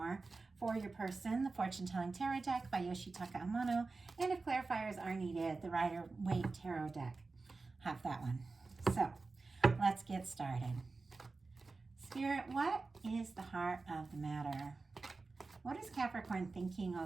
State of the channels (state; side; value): quieter; left; 3.8 dB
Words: For your person, the Fortune Telling Tarot deck by Yoshitaka Amano. And if clarifiers are needed, the Rider-Waite Tarot deck. Have that one. So let's get started. Spirit, what is the heart of the matter? What is Capricorn thinking